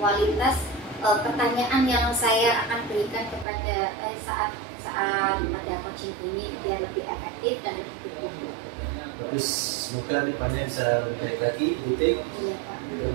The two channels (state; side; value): drops out; left; at 3.5 s